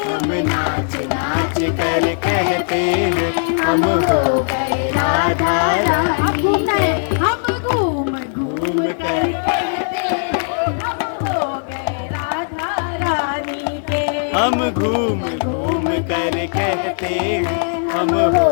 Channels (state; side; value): silent; right; digital silence